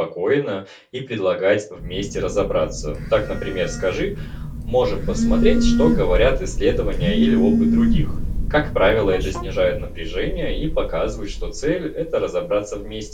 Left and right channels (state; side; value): identical; both; correlation 1.00